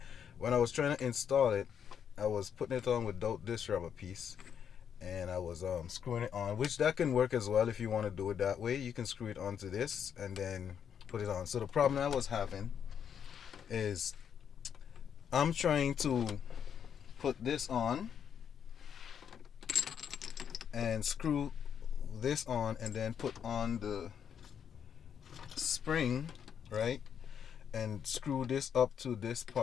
when I was trying to install it, I was putting it on without this rubber piece, and I was screwing it on, which that can work as well. If you want to do it that way, you can screw it onto this and then put it on. So the problem I was having is I'm trying to put this on and screw this on and then put on the spring, right, and screw this up to this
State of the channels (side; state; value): right; quieter; 8.1 dB